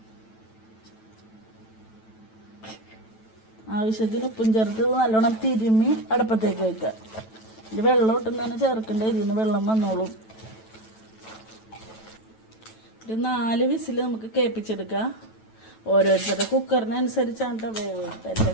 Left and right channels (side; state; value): right; late; 9.1 ms